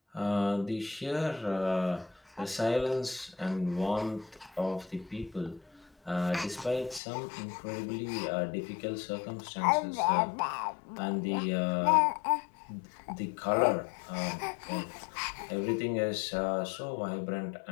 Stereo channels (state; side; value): drops out; right; at 7.0 s